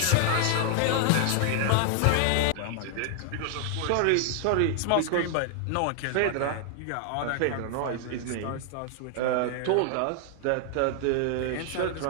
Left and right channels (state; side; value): different; both; correlation 0.00